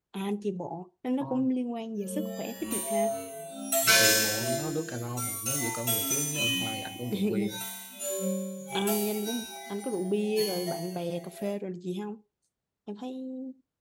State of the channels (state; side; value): identical; both; correlation 1.00